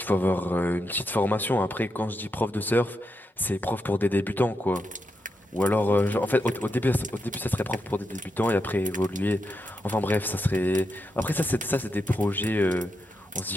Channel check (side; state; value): both; normal; correlation 0.84